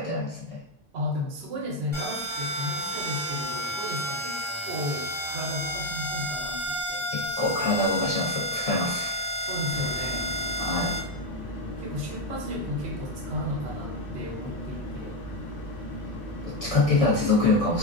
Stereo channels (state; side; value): normal; both; correlation 0.06